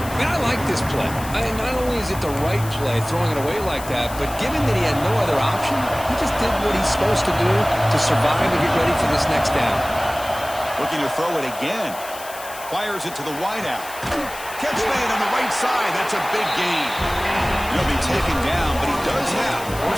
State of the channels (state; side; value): noise; left; hiss, 14 dB below the sound